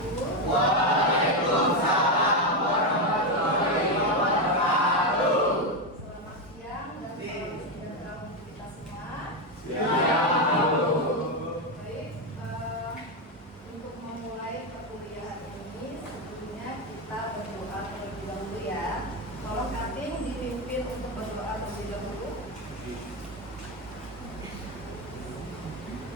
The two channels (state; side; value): normal; both; correlation 0.08